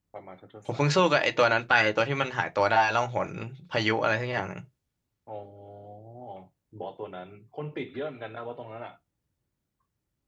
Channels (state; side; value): identical; both; correlation 1.00